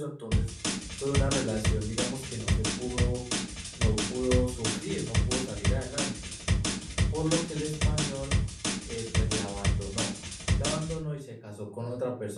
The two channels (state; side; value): identical; both; correlation 1.00